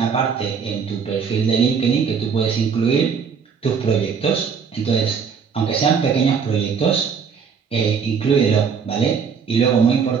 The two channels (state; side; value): quieter; left; 6.3 dB